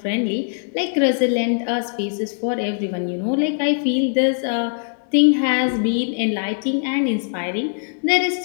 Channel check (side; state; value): right; silent; digital silence